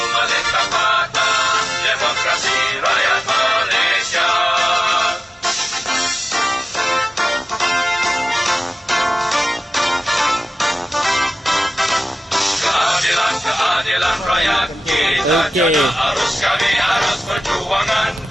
melintang mata demokrasi rakyat Malaysia. Keadilan rakyat kita jana arus kami arus perjuangan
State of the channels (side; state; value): both; normal; correlation 0.96